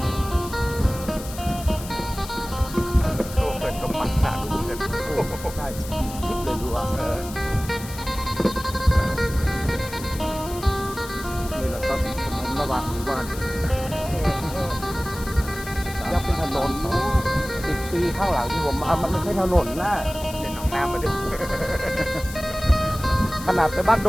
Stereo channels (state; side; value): noise; left; hiss, 14 dB below the sound